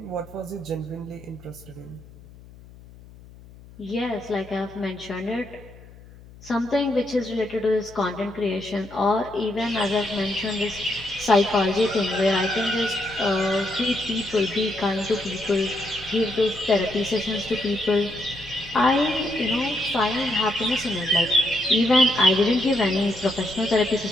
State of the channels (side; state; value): left; noise; hum, 21 dB below the sound